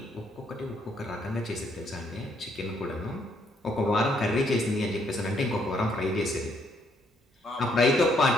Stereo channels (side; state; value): both; normal; correlation 0.71